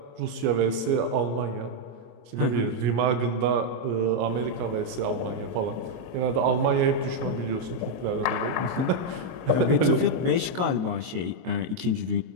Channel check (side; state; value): left; late; 23 ms